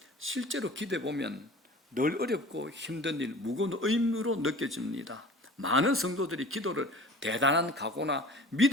실제로 기도해 보면 늘 어렵고 힘든 일, 무거운 의무로 느껴집니다. 많은 성도들이 기도를 대단한 각오나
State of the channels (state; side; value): normal; both; correlation 0.41